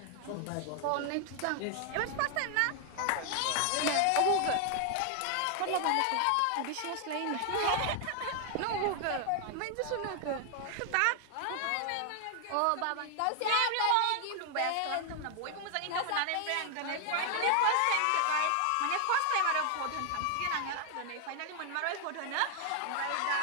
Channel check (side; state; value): both; different; correlation 0.00